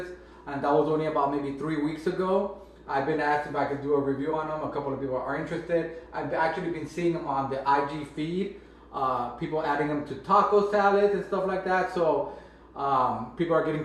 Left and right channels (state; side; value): identical; both; correlation 1.00